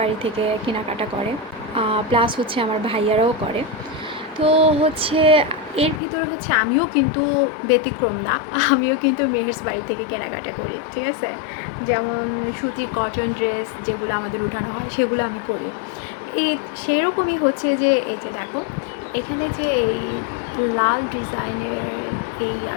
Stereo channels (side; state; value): right; drops out; at 6.0 s